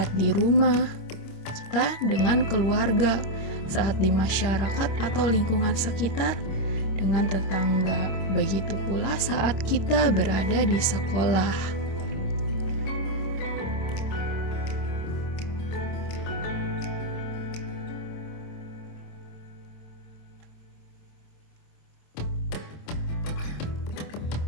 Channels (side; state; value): right; late; 26 ms